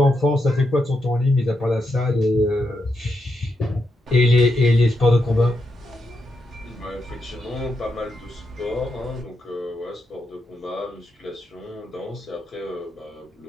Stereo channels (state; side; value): normal; both; correlation 0.83